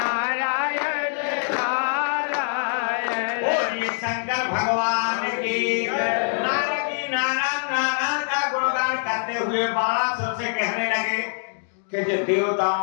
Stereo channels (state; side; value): silent; right; digital silence